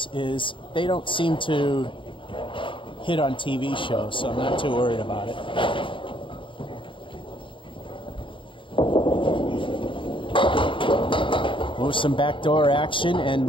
is they don't seem to hit on TV shows, so I'm not too worried about it. Oh, some backdoor action and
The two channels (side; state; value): right; late; 0.25 ms